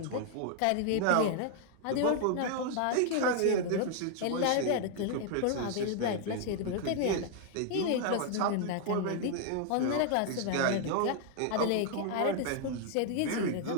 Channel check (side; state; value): both; different; correlation 0.00